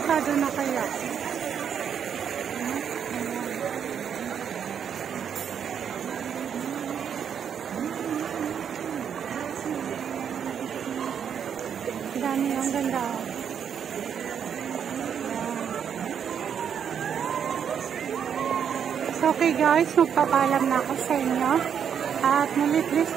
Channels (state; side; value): quieter; left; 8.0 dB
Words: na kaya. Dami, ang ganda. So, okay guys, magpapalam na ako sa inyo. At muli, please